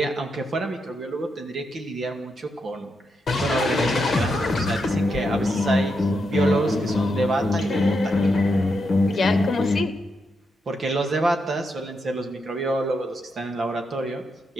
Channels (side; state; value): both; normal; correlation 0.83